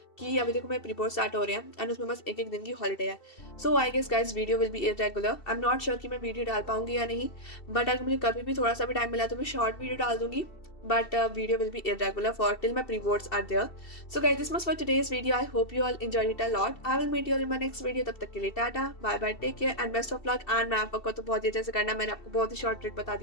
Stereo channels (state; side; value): late; right; 2.7 ms